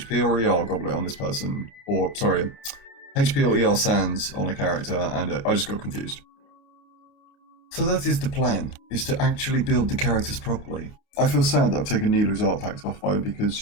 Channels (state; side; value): late; right; 29 ms